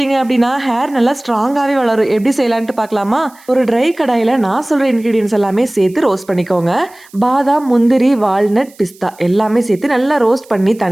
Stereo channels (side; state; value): right; noise; hiss, 26 dB below the sound